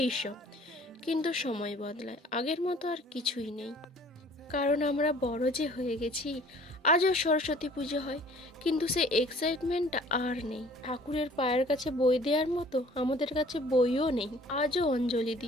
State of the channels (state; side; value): normal; both; correlation 0.52